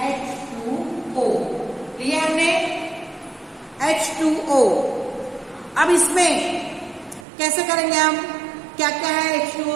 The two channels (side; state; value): left; drops out; at 7.2 s